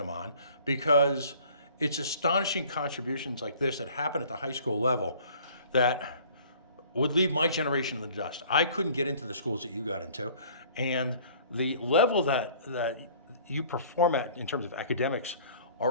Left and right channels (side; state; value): both; inverted; correlation -0.51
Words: on because it's astonishing contributions like this that happen at the high school level that would leave my generation in the dust. I couldn't get into the schools that you got into, and the level that you perform at in terms of academics